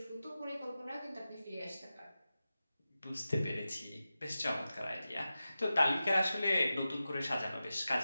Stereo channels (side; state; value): both; inverted; correlation -0.93